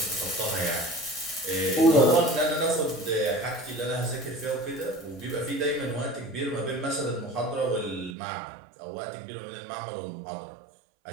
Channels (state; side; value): drops out; left; at 8.2 s